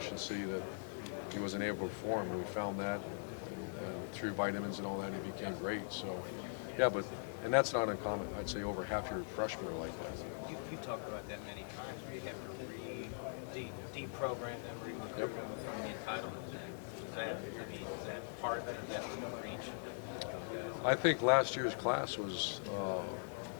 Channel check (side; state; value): right; silent; 50 dB below the other